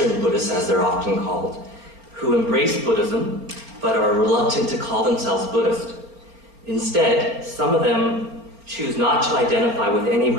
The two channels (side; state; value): left; late; 4.3 ms